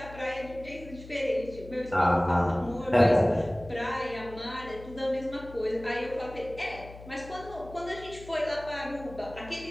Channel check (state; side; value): noise; left; hum, 16 dB below the sound